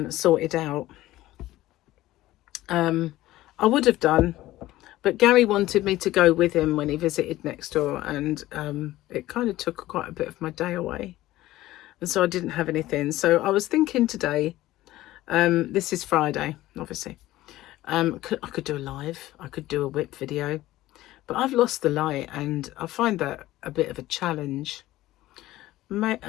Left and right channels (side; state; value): right; quieter; 16.0 dB